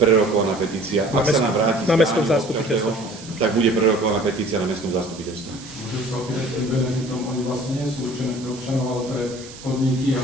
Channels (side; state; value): right; noise; hiss, 17 dB below the sound